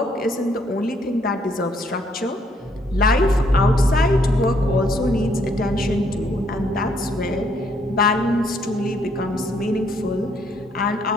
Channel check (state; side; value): normal; both; correlation 0.69